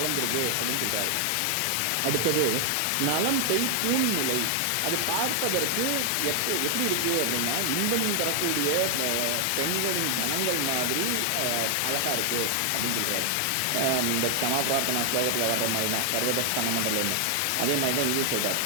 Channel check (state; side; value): different; both; correlation 0.00